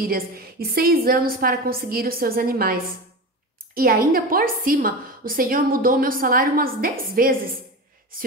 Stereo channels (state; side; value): normal; both; correlation 0.26